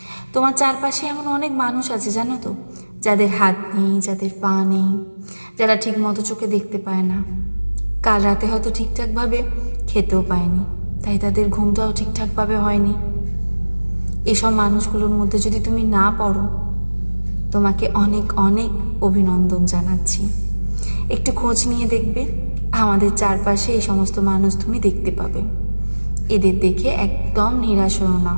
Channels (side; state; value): both; inverted; correlation -1.00